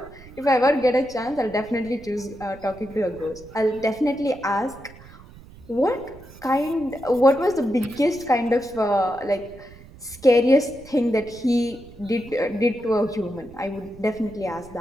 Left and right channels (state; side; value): noise; right; rumble, 20 dB below the sound